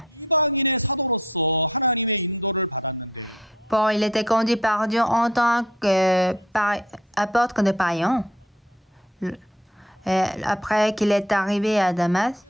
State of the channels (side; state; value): both; normal; correlation 0.55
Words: Paul, il était conduit par Dieu en tant qu'apôtre de païens. Après qu'il est arrivé à Damas,